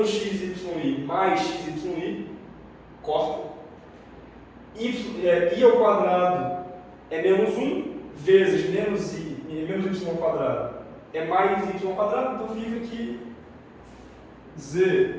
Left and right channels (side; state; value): both; identical; correlation 1.00